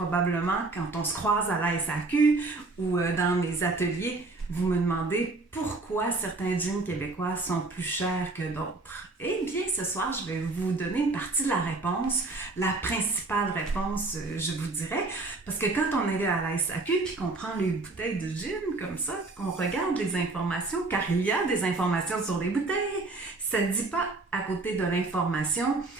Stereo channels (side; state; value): left; quieter; 3.4 dB